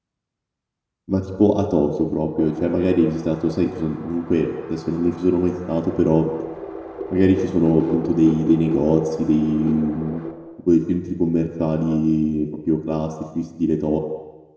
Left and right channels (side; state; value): both; identical; correlation 1.00